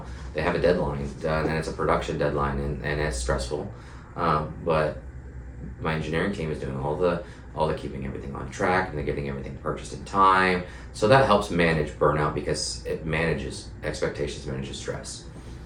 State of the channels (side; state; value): both; identical; correlation 1.00